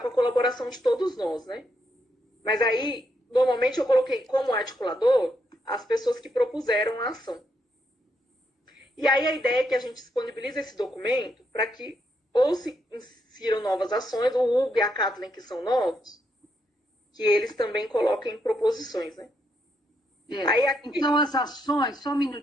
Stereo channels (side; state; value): both; normal; correlation 0.78